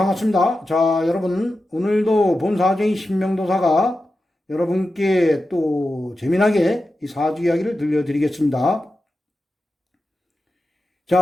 자, 여러분 오늘도 본사주의 신명도사가 여러분께 또 재미나게 이 사주 이야기를 들려드리겠습니다. 자,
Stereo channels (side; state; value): both; normal; correlation 0.92